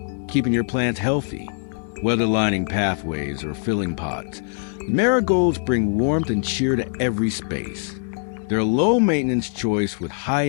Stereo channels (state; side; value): silent; right; digital silence